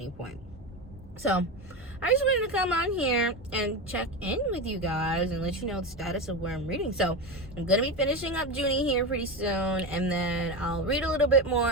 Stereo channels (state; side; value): normal; both; correlation 0.19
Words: point. So I just wanted to come on here and check in with you guys and let you know the status of where I'm reading. So I'm gonna be finishing up Junie here pretty soon, and then I'll read a little bit